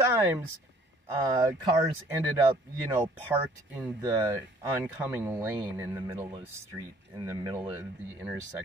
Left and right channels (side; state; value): both; normal; correlation 0.57